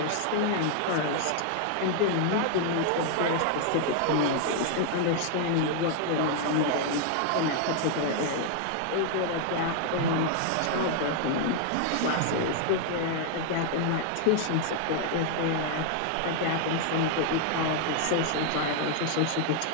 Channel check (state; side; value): different; both; correlation 0.00